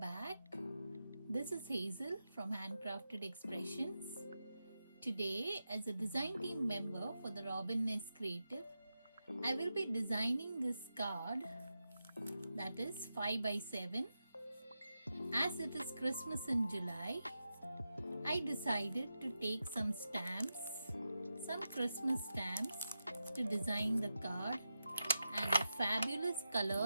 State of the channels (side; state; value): both; inverted; correlation -0.89